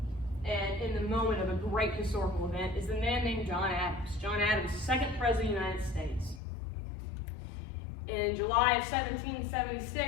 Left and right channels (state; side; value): drops out; right; at 6.4 s